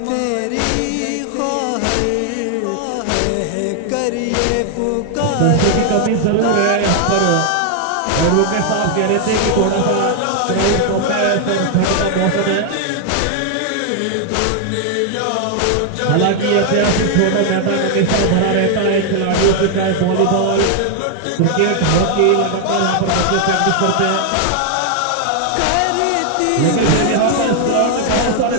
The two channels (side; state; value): both; different; correlation 0.00